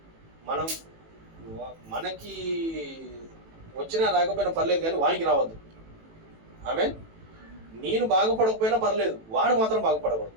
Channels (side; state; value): left; late; 18 ms